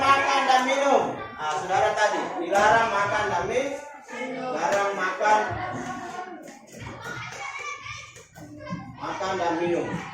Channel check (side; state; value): both; identical; correlation 1.00